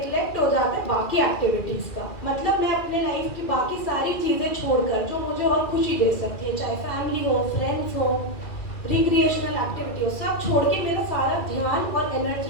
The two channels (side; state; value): right; late; 2.5 ms